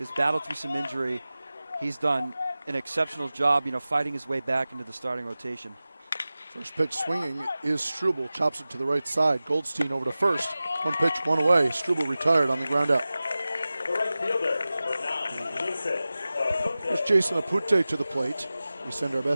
battled through some injury. He's done an exceptional job, fighting his way back into the starting rotation. First pitch swinging is Struble, chops it to the right side. Goldstein over to first. 1 pitch, 1 away. Struble retired on the ground out. Here's Jason Apunte to the plate. We send our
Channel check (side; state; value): both; inverted; correlation -0.96